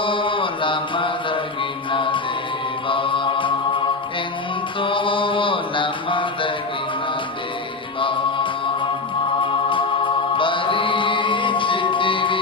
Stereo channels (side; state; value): right; quieter; 3.7 dB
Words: నమ్మదగిన దేవా, ఎంతో నమ్మదగిన దేవా.